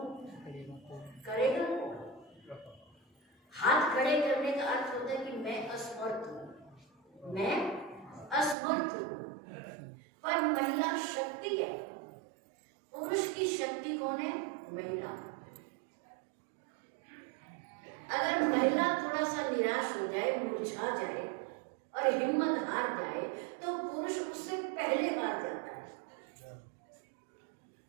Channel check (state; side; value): drops out; left; at 8.6 s